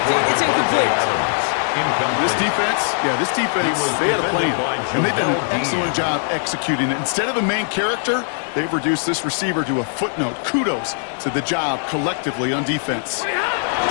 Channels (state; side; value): silent; right; digital silence